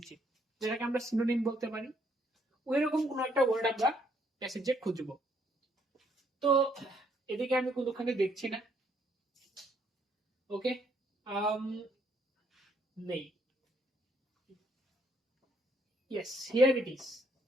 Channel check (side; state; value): both; normal; correlation 0.69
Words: যেটাকে আমরা সিনোনিম বলতে পারি, ওই রকম কোন একটা ওয়ার্ড আমরা প্যাসেজে খুঁজব। তো এদিকে আমি কোনোখানে দেখছি না। ওকে, নেই। Yes, here it is.